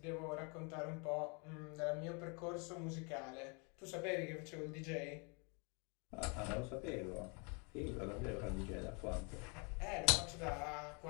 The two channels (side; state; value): right; quieter; 34.0 dB